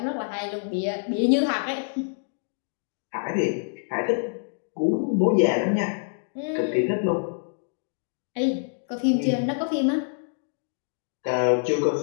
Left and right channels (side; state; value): right; silent; digital silence